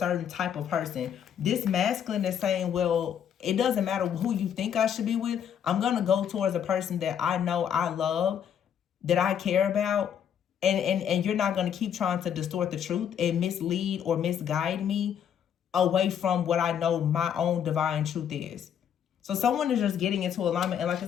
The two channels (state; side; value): quieter; right; 8.8 dB